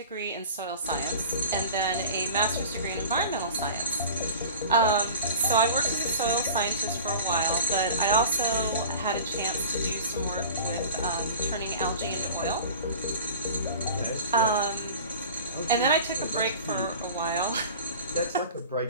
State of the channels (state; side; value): inverted; both; correlation -0.38